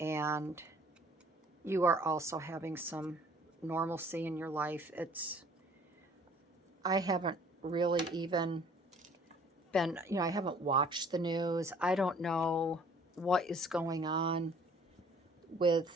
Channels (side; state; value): both; normal; correlation 0.55